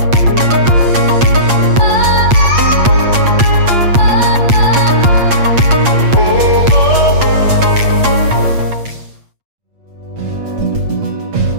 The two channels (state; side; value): late; left; 8.5 ms